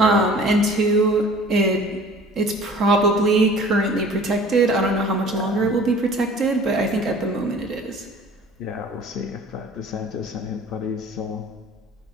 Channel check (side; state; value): both; normal; correlation 0.47